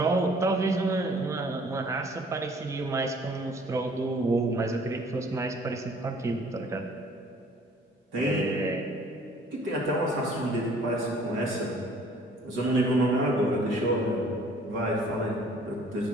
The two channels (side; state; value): both; normal; correlation 0.55